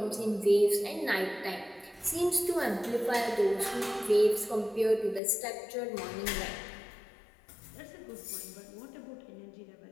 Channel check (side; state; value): right; drops out; at 5.2 s